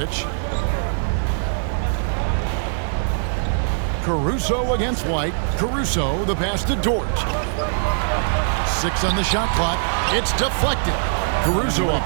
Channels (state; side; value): silent; left; digital silence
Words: Caruso against White. Caruso, the pass to Dort. 6 on the shot clock. It's deflected. Caruso up